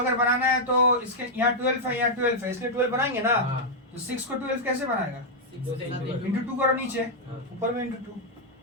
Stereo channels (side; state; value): both; normal; correlation -0.03